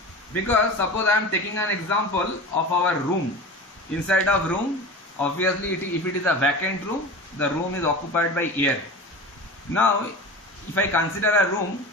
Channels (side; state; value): both; normal; correlation 0.32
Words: Because suppose I am taking an example of our room. Inside of room, obviously if it is a vacant room, the room is occupied by air. Now, if I consider a room